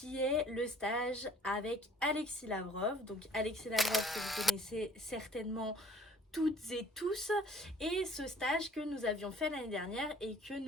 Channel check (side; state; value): both; normal; correlation 0.55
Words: est le stage avec Alexis Lavrov. Donc Alexis Lavrov que vous connaissez certainement toutes et tous, et ce stage que nous avions fait l'année dernière et que